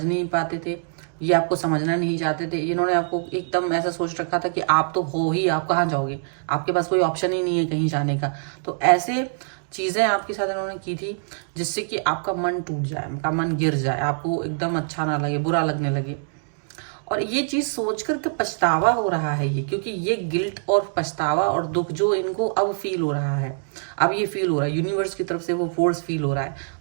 नहीं पाते थे, ये आपको समझना नहीं चाहते थे। इन्होंने आपको एकदम ऐसा सोच रखा था कि आप तो हो ही, आप कहाँ जाओगे, आपके पास कोई ऑप्शन ही नहीं है कहीं जाने का। तो ऐसे चीजें आपके साथ इन्होंने की थी जिससे कि आपका मन टूट जाए, आपका मन गिर जाए, आपको एकदम अच्छा ना लगे, बुरा लगने लगे। और ये चीज सोचकर के पछतावा हो रहा है ये, क्योंकि ये गिल्ट और पछतावा और दुख जो इनको अब फील हो रहा है, अब ये फील हो रहा है, यूनिवर्स की तरफ से वो फोर्स फील हो रहा है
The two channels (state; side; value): silent; left; digital silence